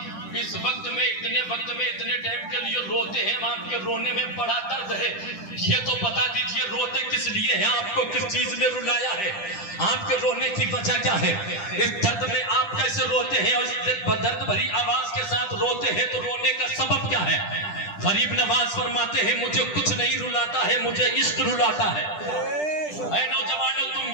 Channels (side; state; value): right; late; 10 ms